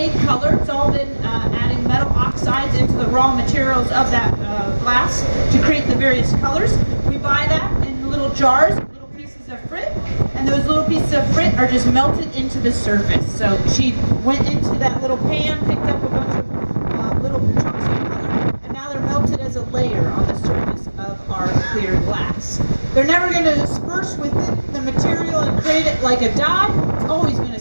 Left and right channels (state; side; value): inverted; both; correlation -1.00